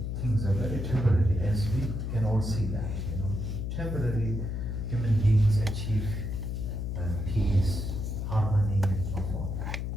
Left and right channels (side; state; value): left; noise; hum, 3 dB below the sound